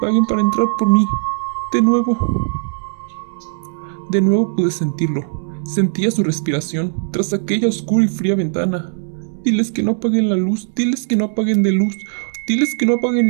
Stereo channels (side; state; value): left; silent; 66 dB below the other